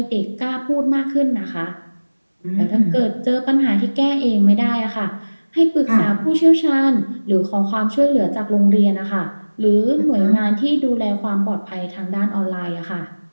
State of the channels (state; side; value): inverted; both; correlation -1.00